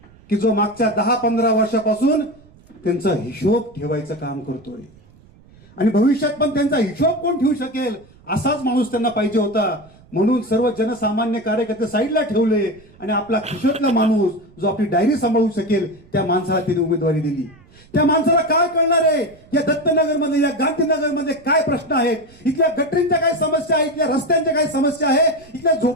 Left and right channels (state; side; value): noise; right; rumble, 26 dB below the sound